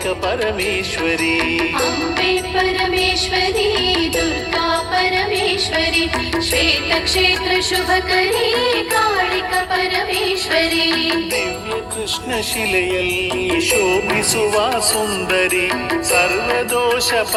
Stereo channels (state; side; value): identical; both; correlation 1.00